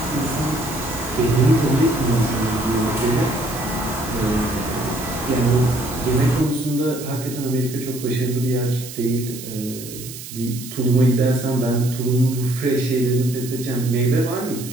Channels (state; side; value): noise; right; hiss, 12 dB below the sound